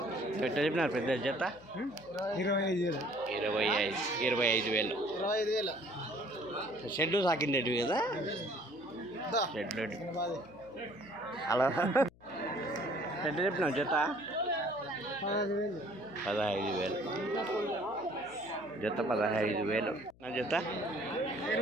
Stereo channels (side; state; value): left; noise; hum, 26 dB below the sound